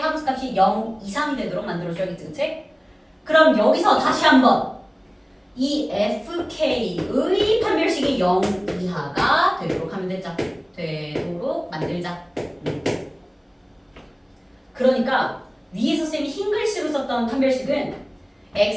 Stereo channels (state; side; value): identical; both; correlation 1.00